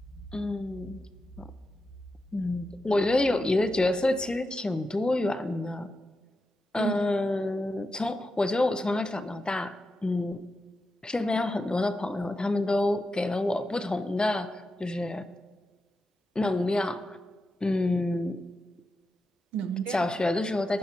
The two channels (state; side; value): normal; both; correlation 0.89